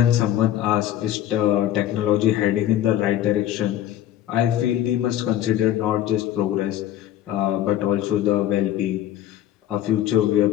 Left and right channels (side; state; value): right; quieter; 12.2 dB